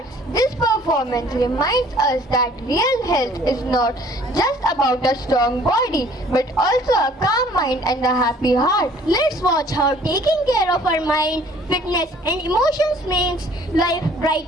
This performance reminds us that real health is not just about a strong body, but also a calm mind and a happy heart. Let's watch how taking care of our mind, fitness and emotions makes life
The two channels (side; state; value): both; normal; correlation 0.55